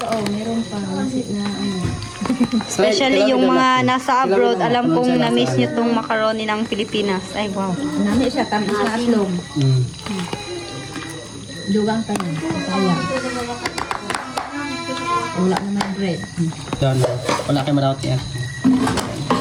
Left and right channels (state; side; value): identical; both; correlation 1.00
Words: oh, meron pa. Masit na, ano. Especially yung mga nasa abroad, alam kong na-miss niyo tong macaroni ng Pilipinas. Ay, wow. Nami siya, tamis na aslong. Mm. Dugang pa niya. Sayang. Wala naman bread. Yan, wala kayo malawat yan.